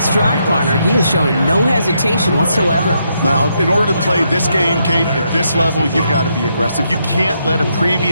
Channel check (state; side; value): inverted; both; correlation -0.78